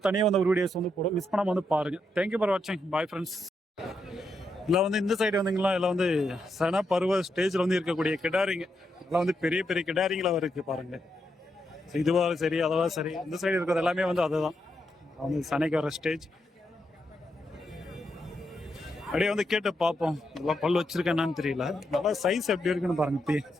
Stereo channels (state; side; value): normal; both; correlation 0.82